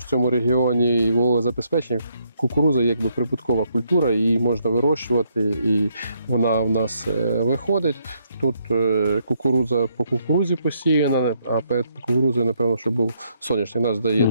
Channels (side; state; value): both; inverted; correlation -0.73